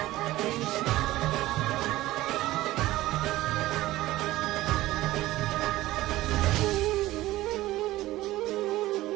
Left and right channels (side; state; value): left; quieter; 16.7 dB